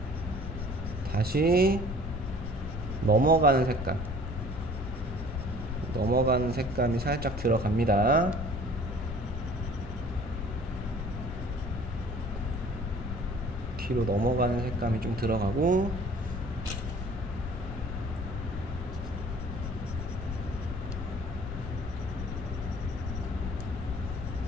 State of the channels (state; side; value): noise; left; rumble, 6 dB below the sound